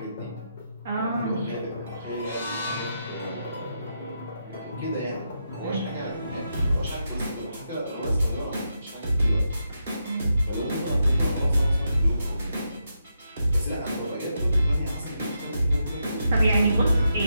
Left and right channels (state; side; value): inverted; both; correlation -0.83